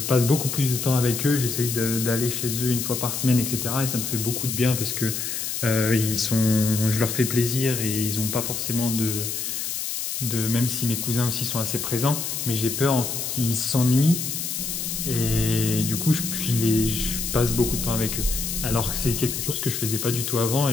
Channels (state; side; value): noise; left; hiss, 3 dB below the sound